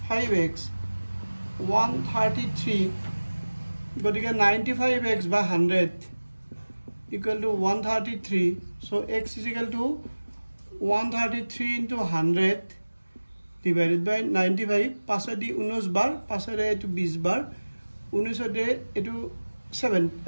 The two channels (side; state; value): both; inverted; correlation -1.00